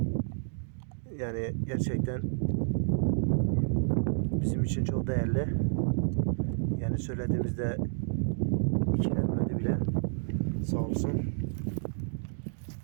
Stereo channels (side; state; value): left; silent; digital silence